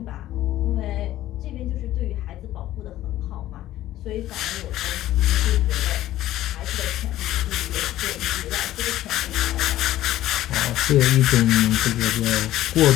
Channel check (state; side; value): quieter; right; 14.2 dB